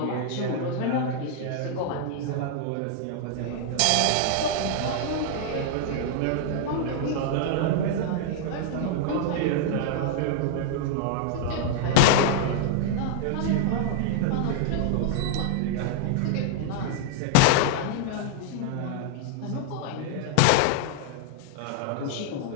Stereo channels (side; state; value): both; different; correlation -0.01